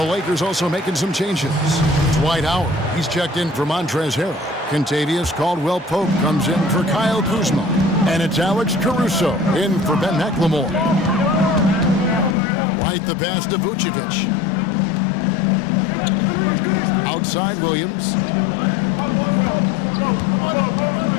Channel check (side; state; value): right; drops out; at 12.4 s